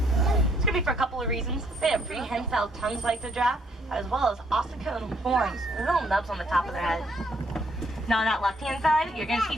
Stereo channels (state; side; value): normal; both; correlation 0.68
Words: It's going to be for a couple of reasons. They have prehensile tongues like the giraffe, as well as ossicone horns, little nubs on the top of their head. Now on that left-hand side, you're going to